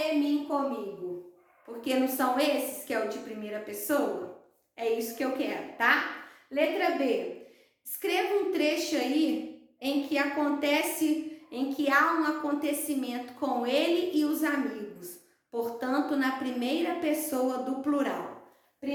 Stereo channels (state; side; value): identical; both; correlation 1.00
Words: mim, comigo. Porque não são esses que é o de primeira pessoa? É isso que eu quero, tá? Letra B. Escreva um trecho aí em que há um acontecimento com ele e os amigos. Portanto, na primeira pessoa do plural.